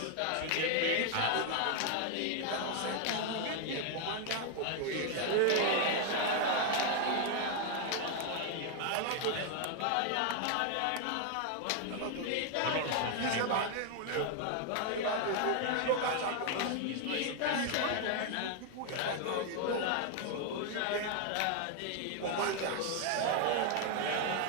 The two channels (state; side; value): different; both; correlation 0.00